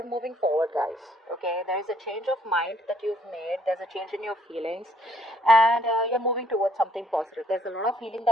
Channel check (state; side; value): normal; both; correlation 0.66